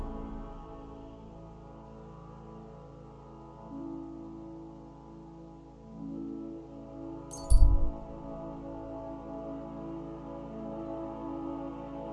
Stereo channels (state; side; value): identical; both; correlation 1.00